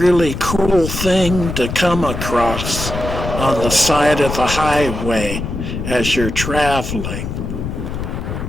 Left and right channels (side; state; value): left; noise; rumble, 5 dB below the sound